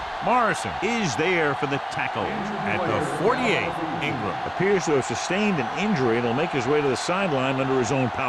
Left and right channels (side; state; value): both; identical; correlation 1.00